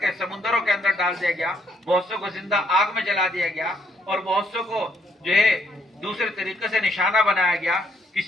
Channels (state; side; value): normal; both; correlation 0.71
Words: سمندروں کے اندر ڈال دیا گیا. بہت سو کو زندہ آگ میں جلا دیا گیا اور بہت سو کو جو ہے دوسرے طریقے سے نشانہ بنایا گیا.